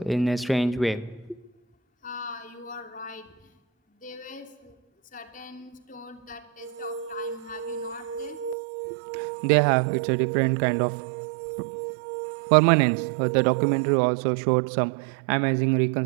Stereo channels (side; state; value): left; drops out; at 8.6 s